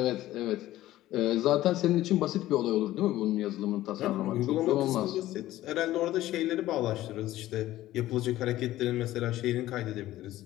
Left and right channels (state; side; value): quieter; right; 15.1 dB